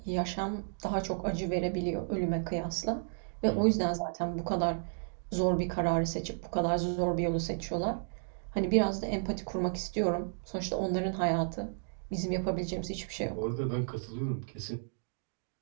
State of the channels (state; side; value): silent; left; digital silence